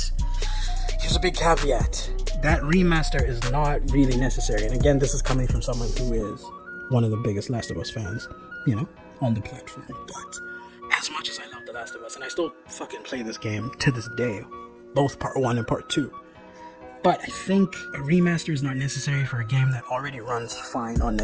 here's a big caveat. That remaster is not really necessary. And again, this is coming from someone who is one of the biggest Last of Us fans, on the platform. But as much as I love The Last of Us, and I still fucking play this game to this day, both Part 1 and Part 2, but I think a remaster is not necessary for a game that already runs fine on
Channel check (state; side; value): identical; both; correlation 1.00